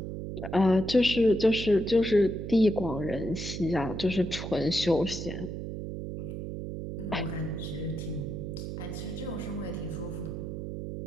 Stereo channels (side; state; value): right; noise; hum, 6 dB below the sound